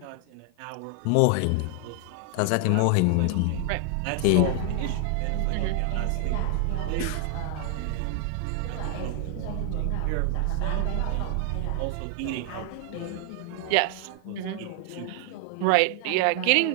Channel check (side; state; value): both; different; correlation 0.00